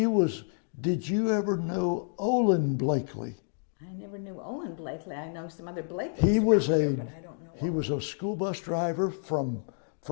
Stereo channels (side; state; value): right; silent; digital silence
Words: was, did you ever know Olin Blakely? I never knew Olin Blakely. I know some other Blakeleys around here, but I don't know He Olin. was a school bus driver from